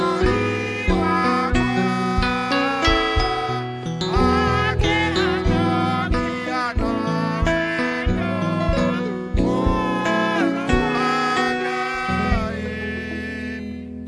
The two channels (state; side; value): identical; both; correlation 1.00